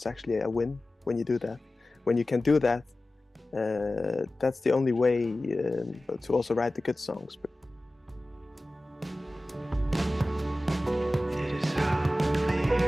actually a win when you do that. When you can do that, that's the only way to also write the good songs.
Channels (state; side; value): normal; both; correlation 0.96